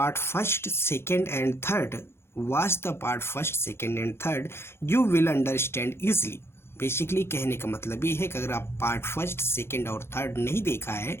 first, second and third, watch the part first, second and third, you will understand easily. Basically कहने का मतलब ये है कि अगर आप part first second और third नहीं देखा है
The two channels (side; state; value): right; late; 0.12 ms